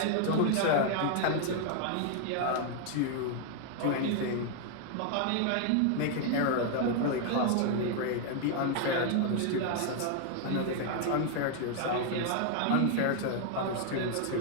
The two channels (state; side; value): different; both; correlation 0.00